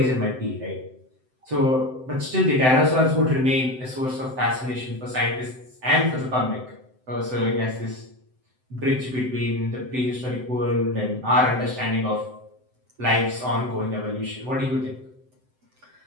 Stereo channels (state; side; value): late; left; 7.8 ms